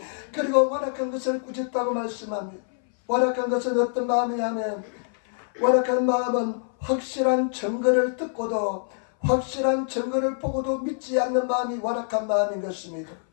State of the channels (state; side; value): silent; right; 59 dB below the other